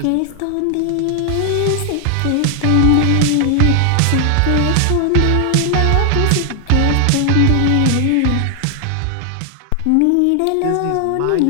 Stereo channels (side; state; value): both; different; correlation 0.00